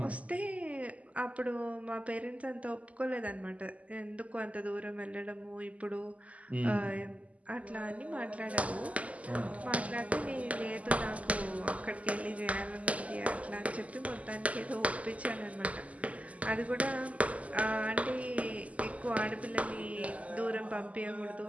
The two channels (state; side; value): late; left; 0.070 ms